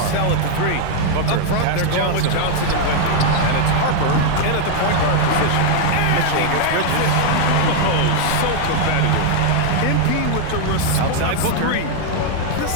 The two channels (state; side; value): different; both; correlation 0.00